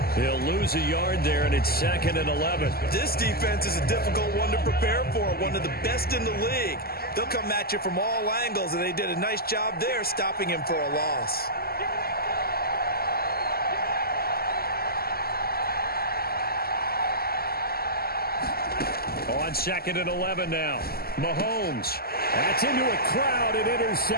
He'll lose a yard there, and it's 2nd and 11. This defense is a difficult one to prepare for, one of the best in the league. They'll come at you from all angles, and they did a nice job there stopping him for a loss. On 2nd and 11 now. Mahomes. That's into a crowd and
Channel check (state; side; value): late; right; 0.45 ms